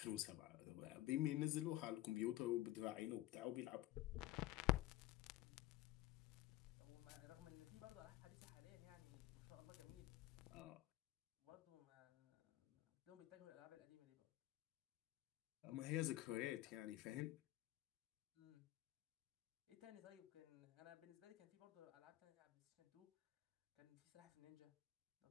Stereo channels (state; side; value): quieter; right; 15.6 dB